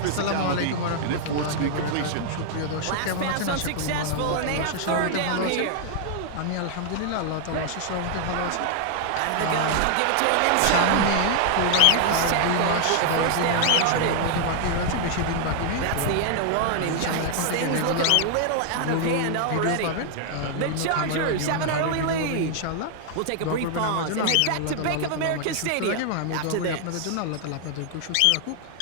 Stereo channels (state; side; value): different; both; correlation 0.00